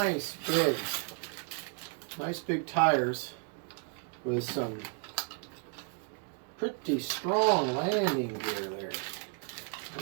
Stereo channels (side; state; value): left; quieter; 39.0 dB